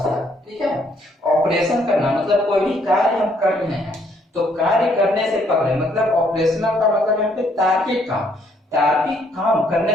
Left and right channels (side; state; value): both; normal; correlation 0.68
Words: ठीक है। ऑपरेशन करना मतलब कोई भी कार्य हम कर रहे हैं तो कार्य करने से पहले, मतलब ऑपरेशनल का मतलब यहाँ पे तार्किक काम, तार्किक काम करने